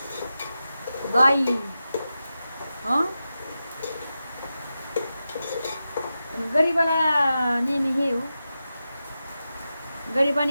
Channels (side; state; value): both; inverted; correlation -0.91